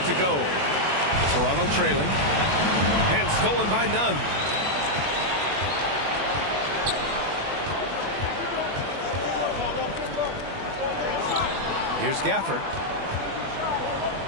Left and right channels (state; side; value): late; left; 21 ms